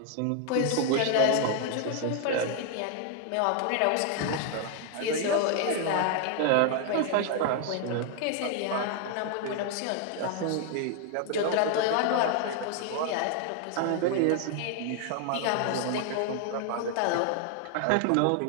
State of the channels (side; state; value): both; different; correlation 0.00